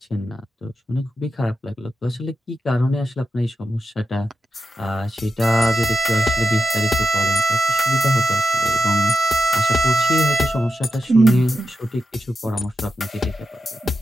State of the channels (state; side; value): normal; both; correlation 0.89